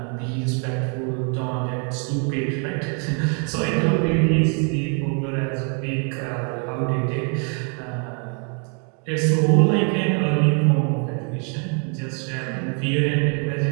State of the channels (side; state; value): left; quieter; 39.6 dB